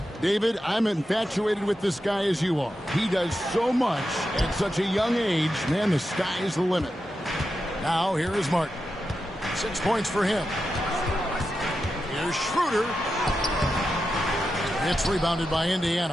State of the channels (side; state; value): both; normal; correlation 0.89